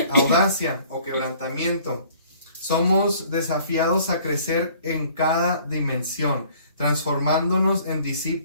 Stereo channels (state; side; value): inverted; both; correlation -0.55